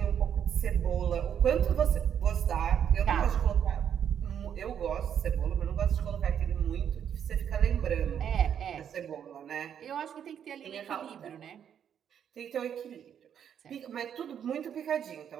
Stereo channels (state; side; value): quieter; left; 8.7 dB